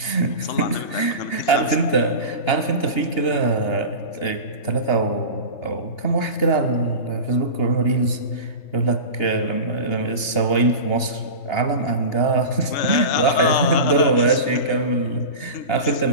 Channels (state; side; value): late; right; 2.8 ms